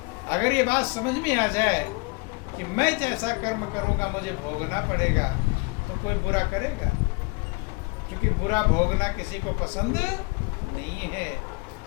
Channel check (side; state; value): right; quieter; 30.1 dB